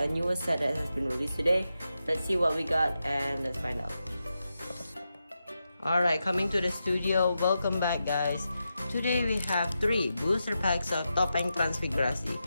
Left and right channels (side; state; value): both; inverted; correlation -0.88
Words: newest set that has been released today. Let's see what we got and let's find out. Alright, coming to the studio. Welcome back, guys. Today we have 3 booster packs of Topeng Transfigurasi.